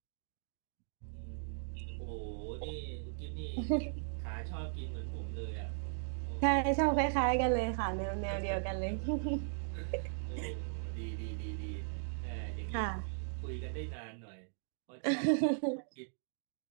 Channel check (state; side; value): silent; left; digital silence